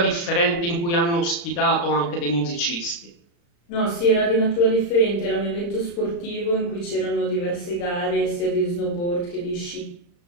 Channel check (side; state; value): right; late; 35 ms